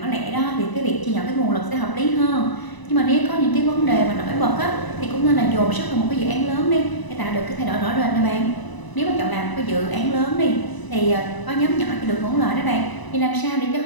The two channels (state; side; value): late; right; 1.0 ms